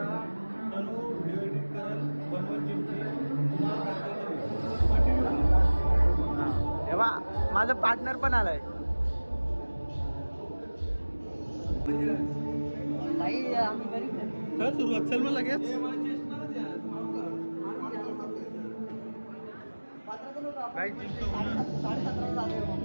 व्हिडिओ एडिट करल, बनवल जिमची. तेव्हा माझा पार्टनर पण आलाय. काय सुरुवात चल मग लगेच. काय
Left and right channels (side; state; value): both; inverted; correlation -1.00